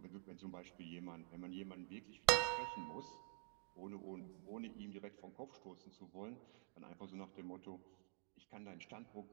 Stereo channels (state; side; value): silent; left; digital silence